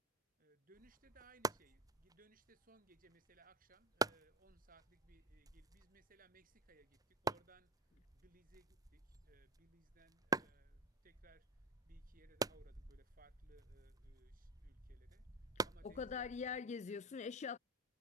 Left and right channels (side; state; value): both; normal; correlation 0.24